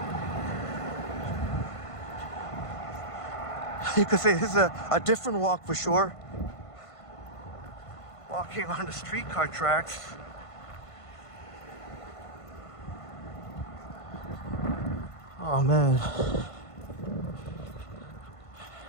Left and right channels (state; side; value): late; right; 1.5 ms